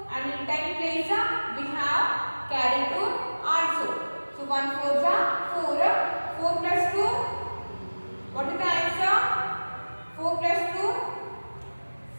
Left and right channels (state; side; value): inverted; both; correlation -1.00